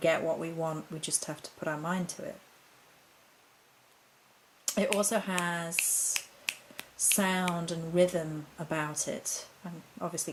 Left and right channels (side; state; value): both; identical; correlation 1.00